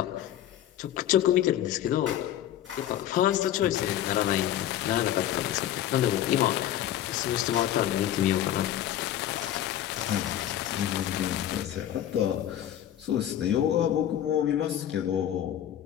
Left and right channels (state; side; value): quieter; right; 11.7 dB